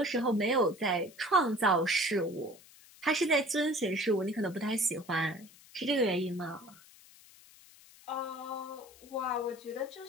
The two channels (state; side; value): noise; left; hiss, 23 dB below the sound